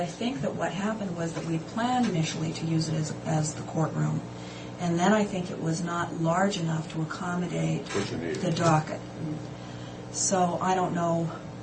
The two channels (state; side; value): identical; both; correlation 1.00